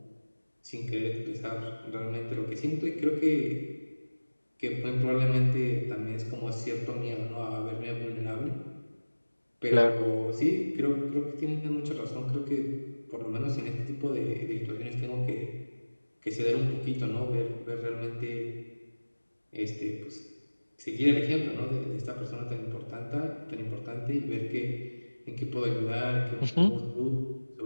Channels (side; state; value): both; inverted; correlation -1.00